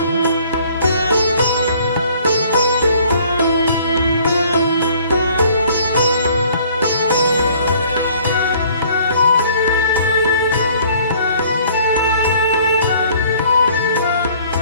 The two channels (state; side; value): inverted; both; correlation -0.56